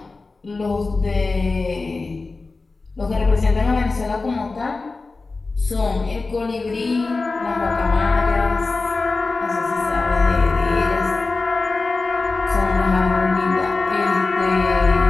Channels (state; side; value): quieter; right; 3.7 dB